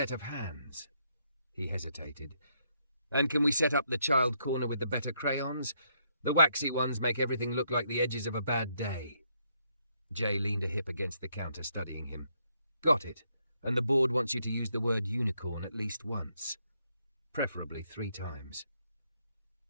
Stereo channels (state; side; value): inverted; both; correlation -0.74